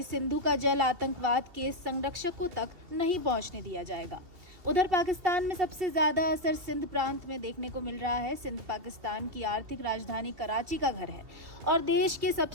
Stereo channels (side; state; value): left; late; 2.7 ms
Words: सिंधु का जल आतंकवाद के संरक्षकों तक नहीं पहुंचने दिया जाएगा। उधर पाकिस्तान में सबसे ज्यादा असर सिंध प्रांत में देखने को मिल रहा है। सिंध पाकिस्तान की आर्थिक राजधानी कराची का घर है और देश के